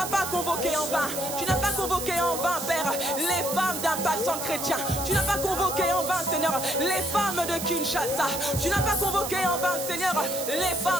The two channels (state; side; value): noise; right; hiss, 6 dB below the sound